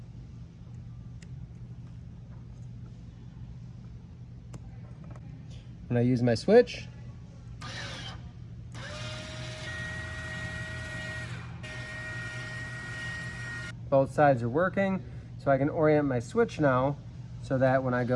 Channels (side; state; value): both; identical; correlation 1.00